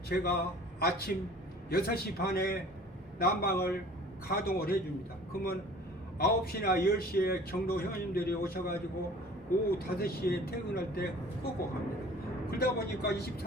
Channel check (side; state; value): both; normal; correlation 0.47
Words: 제가 아침 6시 반에 난방을 가동을 해줍니다. 그러면 9시나 10시에 경로 회원님들이 오셔가지고 오후 5시에 퇴근할 때 끄고 갑니다. 그러다 보니까